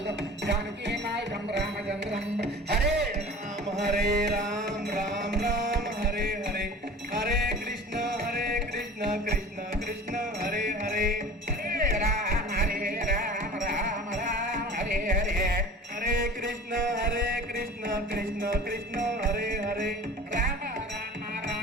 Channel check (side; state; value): both; normal; correlation 0.40